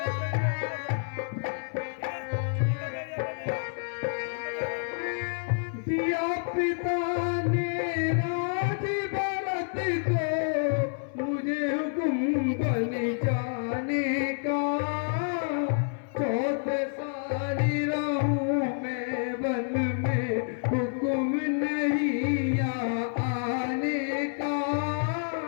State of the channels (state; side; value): silent; right; 59 dB below the other